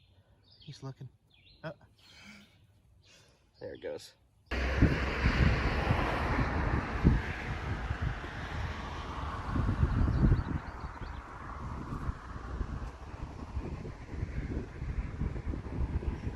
He's looking. Oh. There it goes.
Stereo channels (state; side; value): identical; both; correlation 1.00